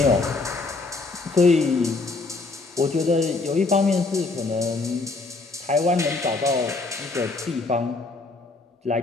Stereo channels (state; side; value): quieter; right; 3.6 dB